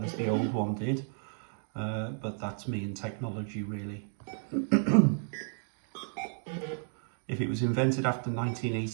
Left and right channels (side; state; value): left; silent; digital silence